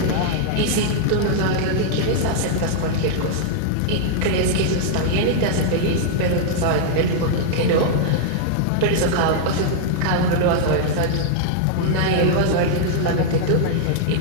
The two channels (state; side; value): different; both; correlation -0.01